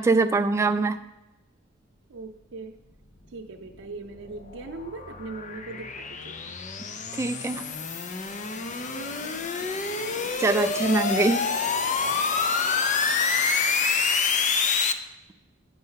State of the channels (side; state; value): both; normal; correlation 0.21